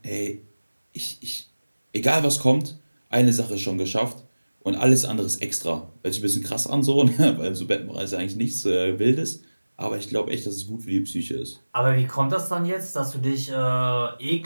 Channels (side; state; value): both; inverted; correlation -1.00